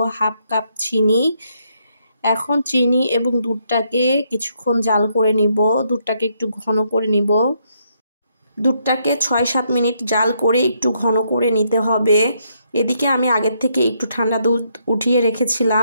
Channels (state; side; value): inverted; both; correlation -0.75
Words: হাফ কাপ চিনি। এখন চিনি এবং দুধটাকে কিছুক্ষণ জাল করে নিব। দুধটাকে একটু ঘন করে নিব। দুধটাকে ৬-৭ মিনিট জাল করে একটু ঘন করে নিতে হবে। এদিকে আমি আগের থেকে একটু ঠান্ডা দুধ উঠিয়ে